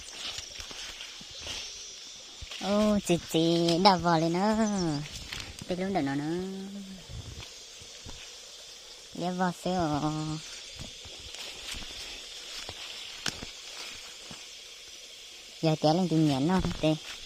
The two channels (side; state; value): both; identical; correlation 1.00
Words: Ô chị đào vào lên nữa. Đi luôn được nó nữa. Đi vào xíu. Giờ té lên tìm nhẫn nó tê.